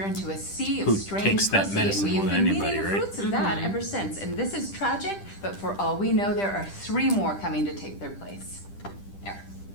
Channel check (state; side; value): late; right; 10 ms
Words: into a sea of Who strange takes that pussy, medicine and we've more been than eating anybody, the right? fruits of that ever since. And this is tragic, but for all we know, there are 3 more coming to take their place. There,